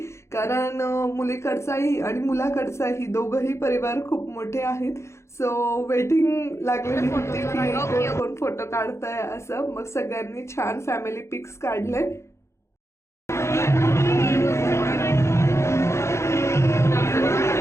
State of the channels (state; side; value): late; right; 0.13 ms